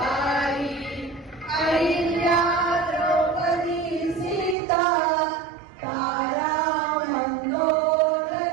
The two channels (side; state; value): left; drops out; at 4.5 s